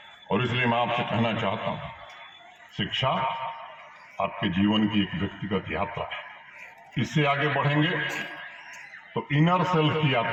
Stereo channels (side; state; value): both; identical; correlation 1.00